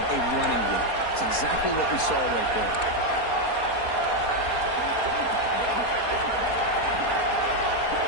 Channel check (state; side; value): late; right; 4.3 ms